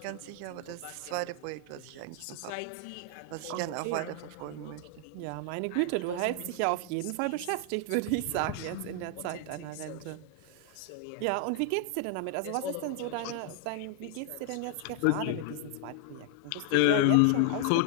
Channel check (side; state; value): both; different; correlation 0.00